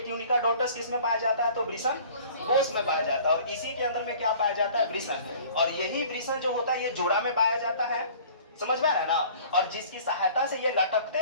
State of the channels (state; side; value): inverted; both; correlation -0.48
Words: ट्यूनिका डॉटस किस में पाया जाता है, तो वृषण कोश में पाया जाता है। और इसी के अंदर में क्या पाया जाता है, वृषण। और यही वृषण जो होता है ये जोड़ा में पाया जाता है, समझ में आ रहा है ना। और जिसकी सहायता से ये लटकते